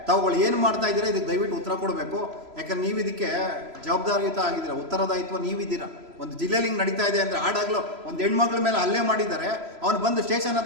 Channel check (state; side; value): late; left; 3.0 ms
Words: ತಾವುಗಳು ಏನು ಮಾಡ್ತಾ ಇದ್ದೀರಾ ಇದಕ್ಕೆ ದಯವಿಟ್ಟು ಉತ್ತರ ಕೊಡಬೇಕು. ಯಾಕಂದ್ರೆ ನೀವು ಇದಕ್ಕೆ ಜವಾಬ್ದಾರಿಯುತ ಆಗಿದ್ದೀರಾ, ಉತ್ತರದಾಯಿತ್ವ ನೀವಿದ್ದೀರಾ. ಒಂದು ಜಿಲ್ಲೆಯಲ್ಲಿ ಹಿಂಗೆ ನಡೀತಾ ಇದೆ ಅಂದರೆ ಆಡಾಗಲೂ ಒಂದು ಹೆಣ್ಮಗಳ ಮೇಲೆ ಹಲ್ಲೆ ಮಾಡಿದ್ದಾರೆ. ಅವನು ಬಂದು ಸ್ಟೇಷನ್